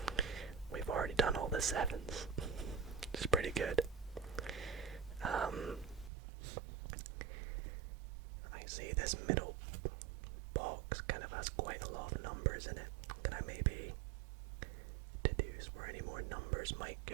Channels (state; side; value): drops out; left; at 6.1 s